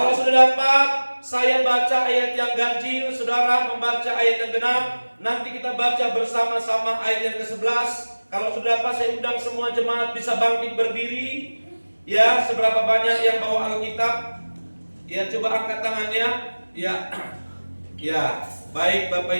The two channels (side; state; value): both; inverted; correlation -1.00